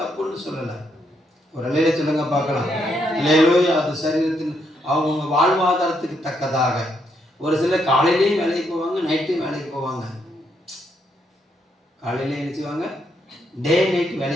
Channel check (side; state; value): both; normal; correlation 0.76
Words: தப்புன்னு சொல்லலை. ஒரு நிலையில சொல்லுங்க பார்க்கலாம். அல்லேலூயா. அது சரீரத்தின் அவங்க வாழ்வாதாரத்துக்கு தக்கதாக. ஒரு சிலர் காலையிலேயும் வேலைக்கு போவாங்க, நைட்டும் வேலைக்கு போவாங்க. காலையிலே என்ன செய்வாங்க, டே நைட்